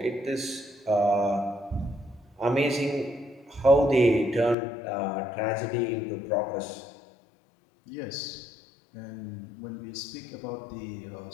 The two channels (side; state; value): right; drops out; at 4.5 s